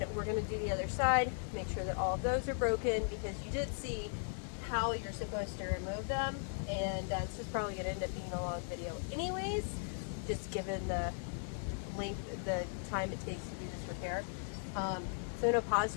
we're going to do the other side, make sure that all of those are broken, because you did see how you're supposed to remove them, and this is probably going to end up being a long video anyways, just given the length, the time it takes to do this repair. So I'm going to pause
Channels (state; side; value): silent; right; 53 dB below the other